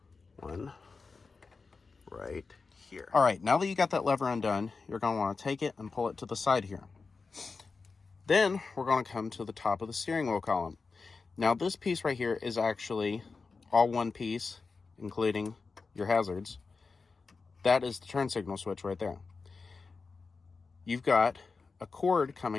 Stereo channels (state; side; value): quieter; right; 4.4 dB